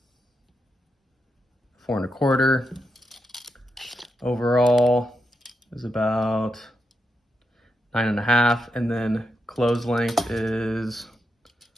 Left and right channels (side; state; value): both; normal; correlation 0.84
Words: 4 1/4. Overall is about 9 1/2, and then close length is